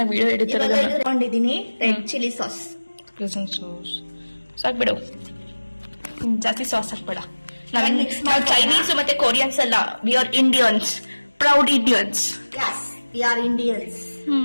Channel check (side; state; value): both; inverted; correlation -1.00